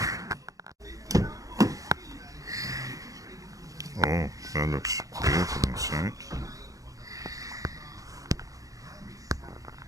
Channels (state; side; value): late; left; 0.17 ms